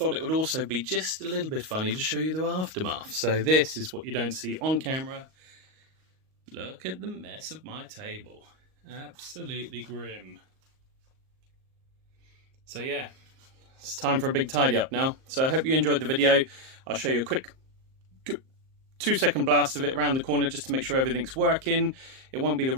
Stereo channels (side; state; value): left; late; 38 ms